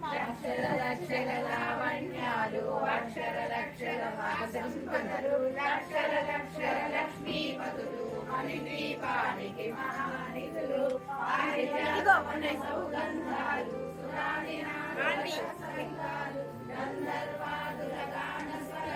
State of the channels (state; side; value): identical; both; correlation 1.00